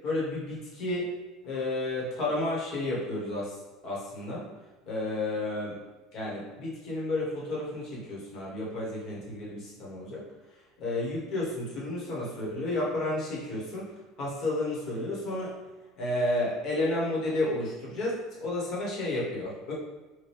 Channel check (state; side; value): normal; both; correlation 0.44